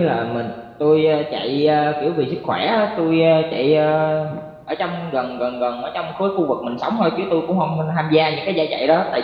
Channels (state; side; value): identical; both; correlation 1.00